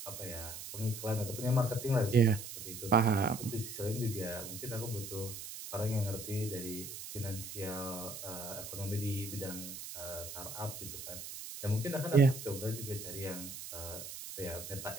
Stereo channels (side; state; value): right; noise; hiss, 9 dB below the sound